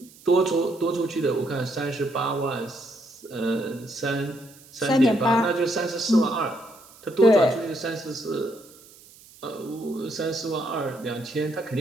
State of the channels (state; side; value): noise; right; hiss, 23 dB below the sound